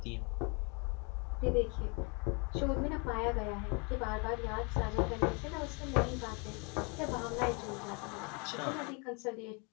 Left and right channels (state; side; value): quieter; right; 31.6 dB